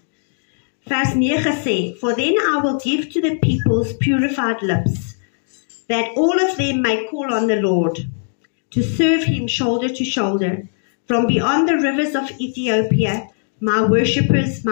Vers 9 sê, for then I will give to the peoples purified lips, that all of them may call on the Lord, to serve him shoulder to shoulder. From beyond the rivers of Ethiopia, my worshippers,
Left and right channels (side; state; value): right; silent; digital silence